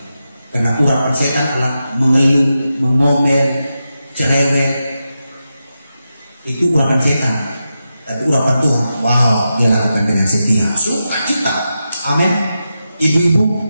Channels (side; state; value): both; inverted; correlation -0.89